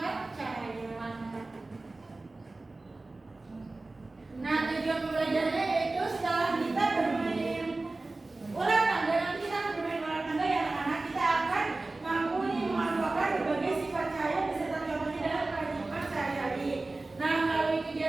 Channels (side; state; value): left; quieter; 3.2 dB